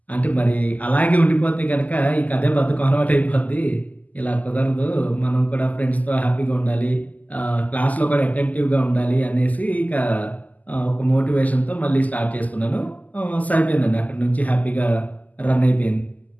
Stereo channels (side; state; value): right; late; 0.078 ms